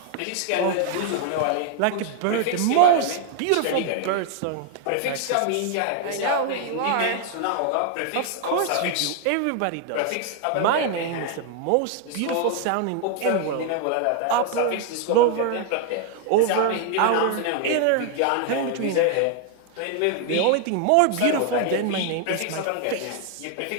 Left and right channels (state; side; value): different; both; correlation 0.00